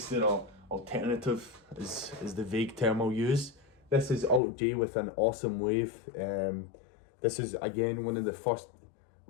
they're all alternative is the vague term I'll use. This is Alt J with An Awesome Wave. This is again one of the first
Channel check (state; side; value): drops out; right; at 4.4 s